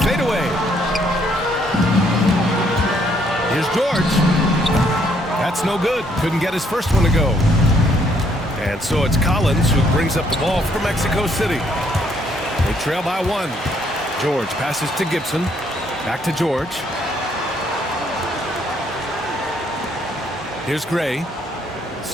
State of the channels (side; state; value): both; normal; correlation 0.69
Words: fadeaway. Here's George. That's no good. Couldn't get his first one to go. And so it's Collins who brings up the ball for Mexico City. They trail by 1. George passes to Gibson. Back to George. Here's Gray.